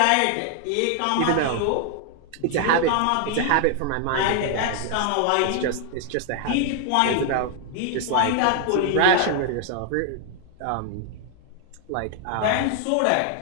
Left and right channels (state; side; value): different; both; correlation 0.00